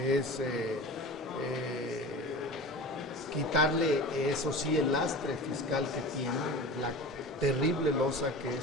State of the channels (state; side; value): normal; both; correlation 0.34